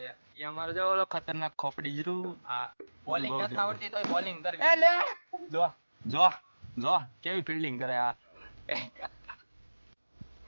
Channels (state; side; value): inverted; both; correlation -1.00